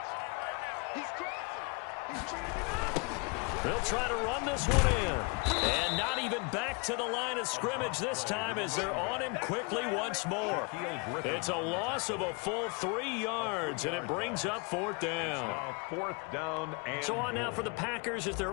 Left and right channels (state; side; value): quieter; right; 31.9 dB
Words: They'll try to run this one in. And not even back to the line of scrimmage this time as they're on him quickly once more. It's a loss of a full 3 yards, and it brings up 4th down. 4th down and so on now for the Packers is their